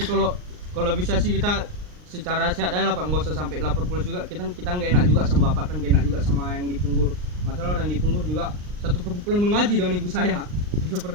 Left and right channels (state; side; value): late; left; 39 ms